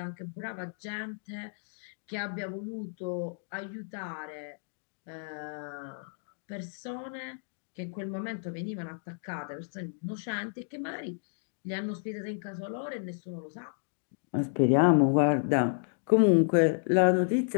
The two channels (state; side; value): silent; right; digital silence